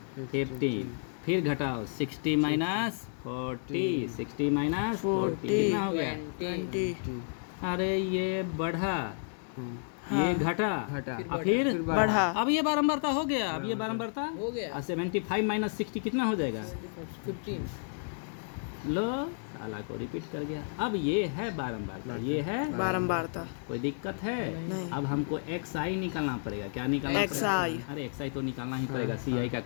15। फिर घटाओ 60 माइनस 40, 60 माइनस 40 कितना हो गया? 20, ठीक अरे ये बढ़ा ये घटा घटा और फिर बढ़ा। अब ये बारंबारता हो गया, अब ये बारंबारता हो गया। 75 माइनस 60 कितना हो जाएगा? 15 लो साला को रिपीट कर गया। अब ये है बारंबारता, ये है बारंबारता। कोई दिक्कत है? नहीं। अब हमको एक्स आई निकालना पड़ेगा। क्या निकालना पड़ेगा? XI। अरे एक्स आई तो निकालना ही पड़ेगा, सी आई का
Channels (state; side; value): silent; right; digital silence